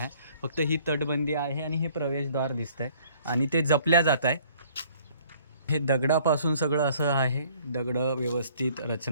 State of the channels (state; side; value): inverted; both; correlation -0.57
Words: फक्त ही तटबंदी आहे आणि हे प्रवेशद्वार दिसतंय आणि ते जपल्या जात आहे. हे दगडापासून सगळं असं आहे, दगडं व्यवस्थित